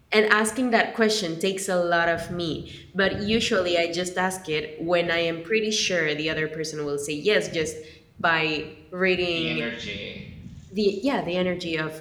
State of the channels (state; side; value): identical; both; correlation 1.00